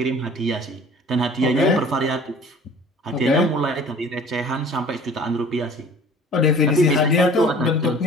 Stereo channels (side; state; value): both; normal; correlation 0.48